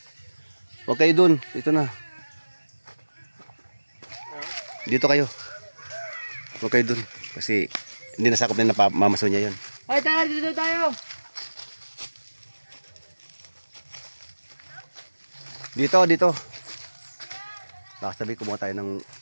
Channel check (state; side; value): inverted; both; correlation -1.00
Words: Huwag kayo doon, dito na. Dito kayo. Huwag kayo doon. Kasi, hindi nasakop na napamamaso niya yun. Ay, tara, dito tayo. Dito. Baka sabi, kumuha tayo ng